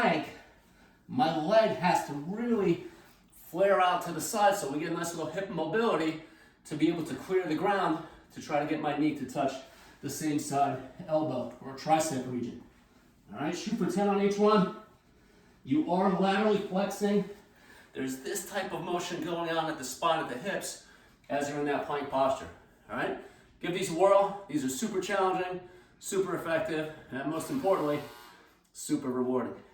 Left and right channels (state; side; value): identical; both; correlation 1.00